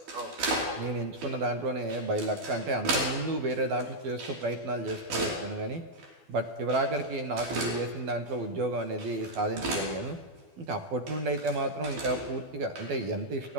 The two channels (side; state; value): left; late; 12 ms